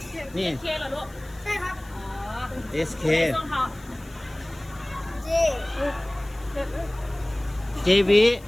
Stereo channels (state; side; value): noise; left; hiss, 25 dB below the sound